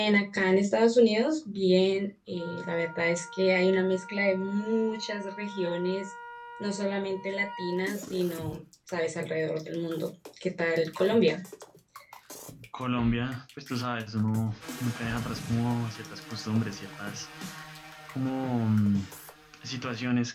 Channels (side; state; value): both; identical; correlation 1.00